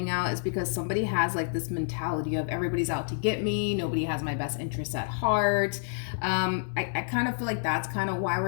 out is because somebody has like this mentality of everybody's out to get me, nobody has my best interests at heart. I kind of feel like that's kind of why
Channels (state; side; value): silent; right; digital silence